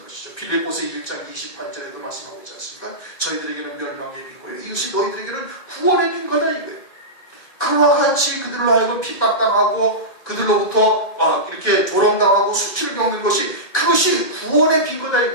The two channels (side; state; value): right; late; 1.9 ms